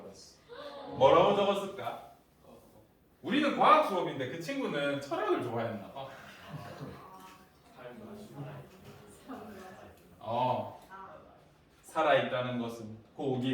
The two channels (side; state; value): both; identical; correlation 1.00